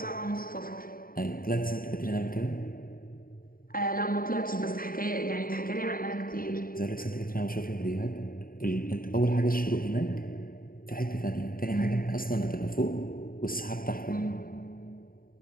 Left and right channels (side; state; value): right; late; 0.42 ms